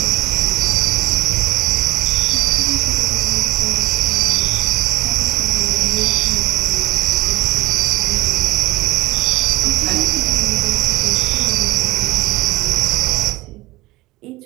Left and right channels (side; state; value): left; quieter; 19.5 dB